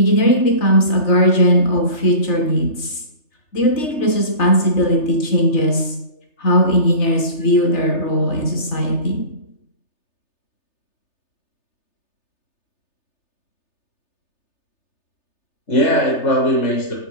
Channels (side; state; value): right; late; 3.3 ms